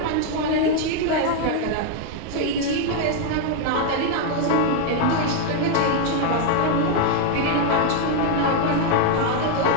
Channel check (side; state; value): both; different; correlation 0.00